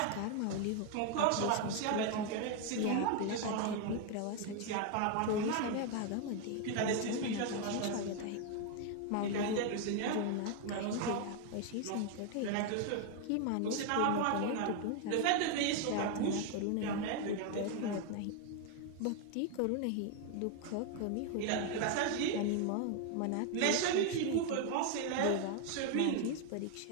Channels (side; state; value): both; different; correlation 0.01